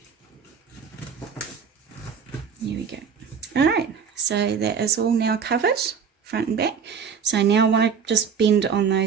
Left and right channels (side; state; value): left; quieter; 6.6 dB